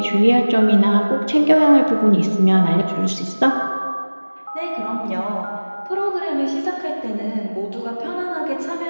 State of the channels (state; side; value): inverted; both; correlation -1.00